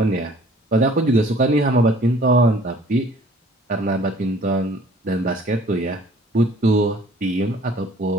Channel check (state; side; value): normal; both; correlation 0.53